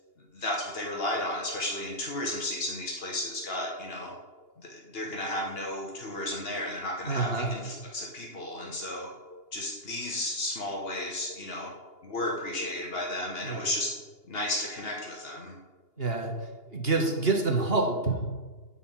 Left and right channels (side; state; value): right; late; 2.8 ms